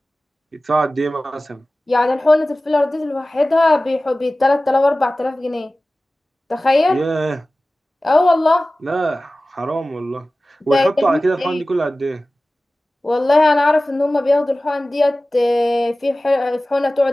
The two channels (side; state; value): both; normal; correlation 0.97